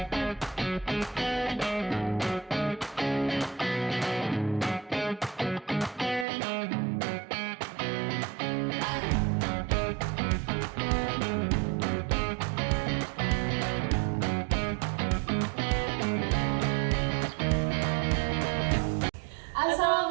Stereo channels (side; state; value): left; drops out; at 6.2 s